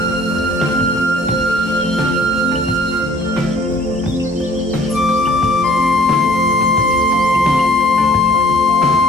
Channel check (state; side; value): normal; both; correlation 0.55